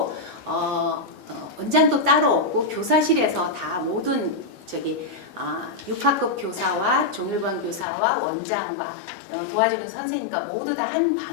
원장도 따로 없고 교사실에서 다 모든 6학급 교사와 종일반 교사와 원장과 도와주는 선생님과 모두 다 한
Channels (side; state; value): right; drops out; at 7.9 s